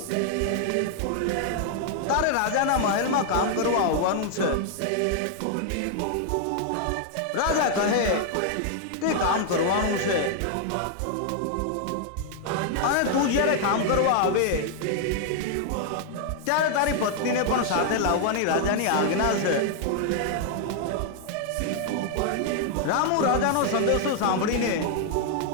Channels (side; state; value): both; different; correlation 0.00